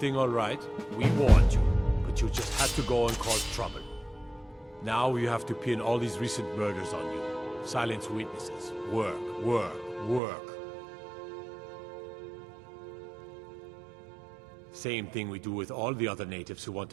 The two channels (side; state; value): left; drops out; at 10.2 s